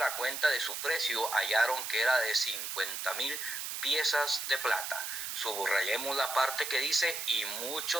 cuenta de su precio hallaron que era de 50,000 piezas de plata. Subrayemos la parte que dice y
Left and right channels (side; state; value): right; noise; hiss, 5 dB below the sound